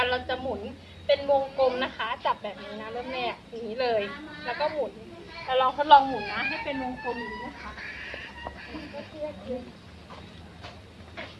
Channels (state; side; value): identical; both; correlation 1.00